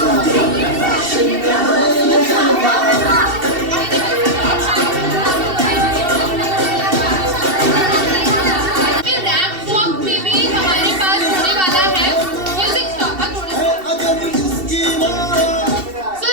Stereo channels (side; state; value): left; late; 2.7 ms